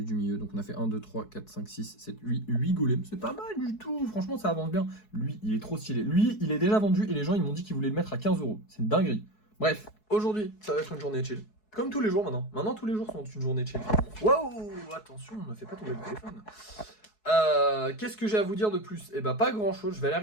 du milieu. Donc on a fait 1, 2, 3, 4, 5, 6, 7, 8 golems. C'est pas mal du tout, franchement ça avance bien. Lui, il est trop stylé. Lui, il est déjà vendu et les gens ils m'ont dit qu'ils voulaient le mettre à 15 €. C'est une dinguerie. Bref, aujourd'hui, ça va être une journée chill. Comme tous les jours maintenant. Maintenant, tous les jours sont une journée chill. Waouh, attention, ne fais pas tomber le téléphone. Qu'est-ce que j'ai à vous dire de plus? Eh ben pas grand chose, je vais aller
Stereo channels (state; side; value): late; right; 4.7 ms